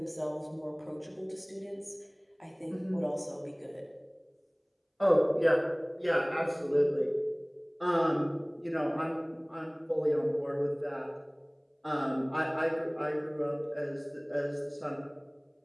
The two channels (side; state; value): both; identical; correlation 1.00